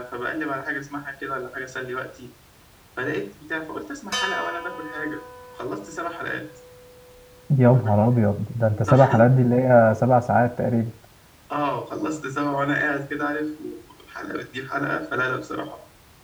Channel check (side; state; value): both; identical; correlation 1.00